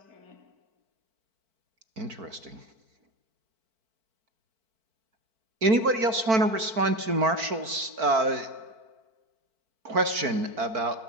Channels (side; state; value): left; late; 4.5 ms